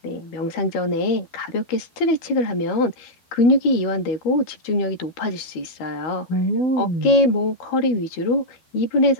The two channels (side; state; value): right; late; 13 ms